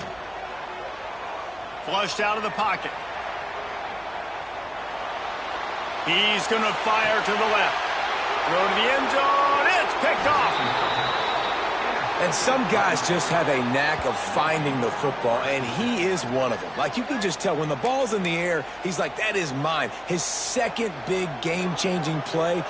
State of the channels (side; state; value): right; noise; hum, 26 dB below the sound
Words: Flushed out of the pocket. He's going to fire to the left. Throw to the end zone. It's picked off. And some guys just have a knack of finding the football, and he is one of them. Like, you can just tell when the ball's in the air, he's like, that is mine. His second big game-changing play